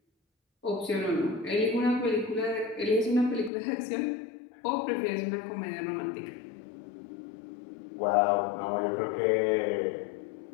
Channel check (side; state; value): right; drops out; at 3.5 s